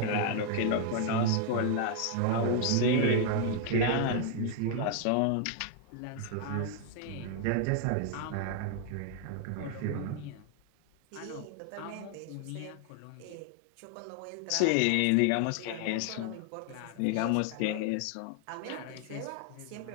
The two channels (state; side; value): different; both; correlation 0.00